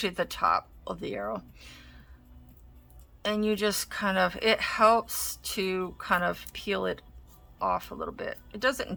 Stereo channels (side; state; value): both; identical; correlation 1.00